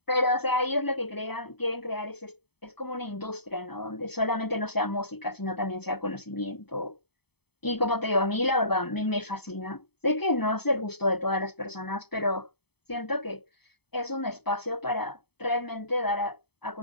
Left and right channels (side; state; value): right; late; 0.97 ms